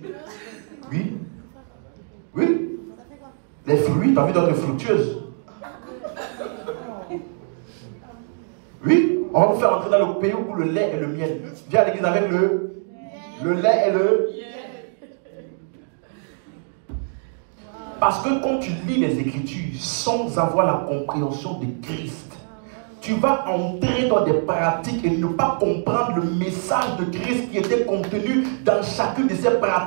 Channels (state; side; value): silent; left; 63 dB below the other